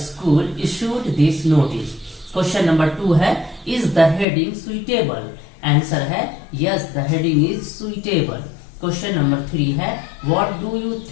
issued this notice. Question number 2 है is the heading suitable. Answer है yes the heading is suitable. Question number 3 है what do you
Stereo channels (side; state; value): right; drops out; at 4.2 s